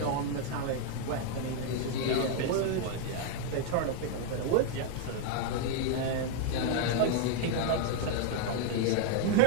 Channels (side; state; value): both; different; correlation 0.00